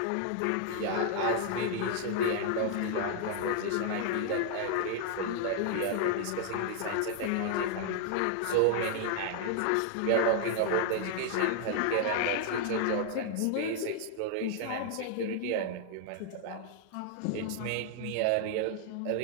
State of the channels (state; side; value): different; both; correlation 0.00